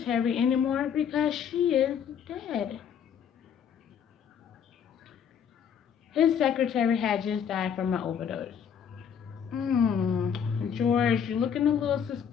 anymore because she is dead. His secretary had just died from an overdose. George, you're looking a little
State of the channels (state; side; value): quieter; right; 7.8 dB